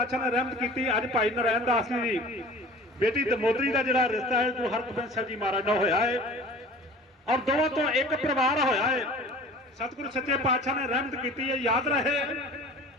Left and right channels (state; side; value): normal; both; correlation 0.43